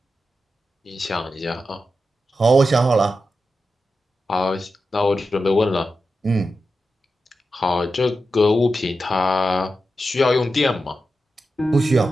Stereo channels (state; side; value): normal; both; correlation 0.90